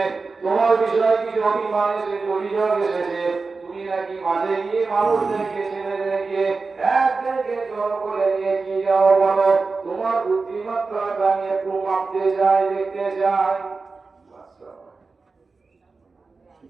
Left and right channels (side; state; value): left; quieter; 4.2 dB